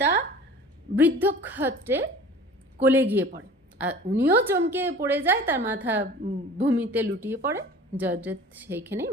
বৃদ্ধক্ষত্রে কোলে গিয়ে পড়ে। আর উনিও চমকে পড়ে যায়, তার মাথা ভূমিতে লুটিয়ে পড়ে। জয়দ্রথ সেইখানেই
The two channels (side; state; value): both; normal; correlation 0.43